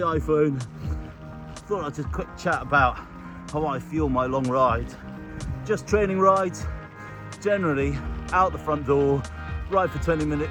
iPhone. Thought I'd just quick chat about how I fuel my long rides. Just training rides, generally out the front door, ride for 20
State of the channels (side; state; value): both; identical; correlation 1.00